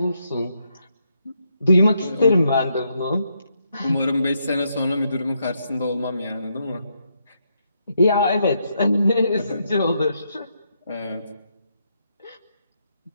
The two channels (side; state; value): both; inverted; correlation -0.79